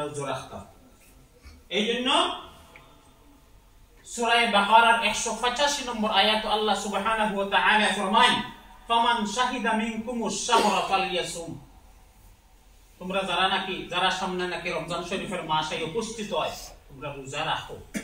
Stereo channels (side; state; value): both; identical; correlation 1.00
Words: রোজা রাখতাম। এই জন্য সূরা বাকারার 185 নম্বর আয়াত আল্লাহ সুবহানাহু ওয়া তাআলা ফরমায়, ফামান শাহিদা মিনকুমুশ শাহরা ফালইয়াসুম, তোমরা যারা সামনে নাকি রমজান শরীফের মাসে উপস্থিত হয়, তোমরা রোজা রাখো।